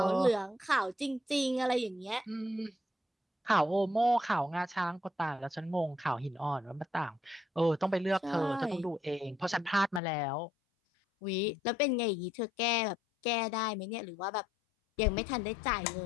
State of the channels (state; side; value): drops out; right; at 10.0 s